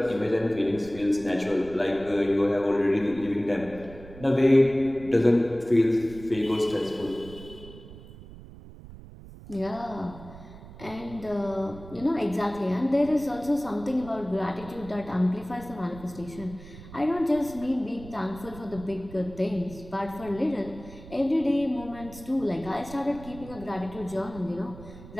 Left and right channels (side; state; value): right; noise; rumble, 16 dB below the sound